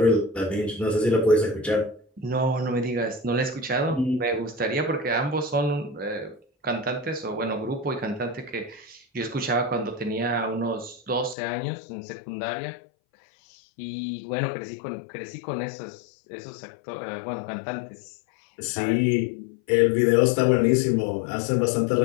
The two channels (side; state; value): right; drops out; at 11.4 s